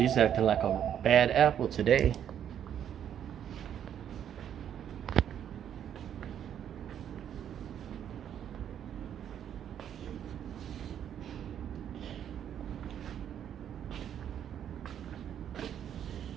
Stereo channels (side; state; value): left; quieter; 9.5 dB